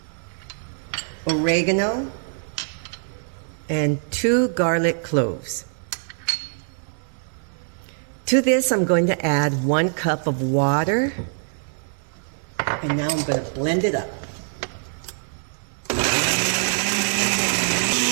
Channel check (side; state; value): left; silent; digital silence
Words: oregano, and 2 garlic cloves. To this, I'm going to add 1 cup of water, and now I'm going to blend it up.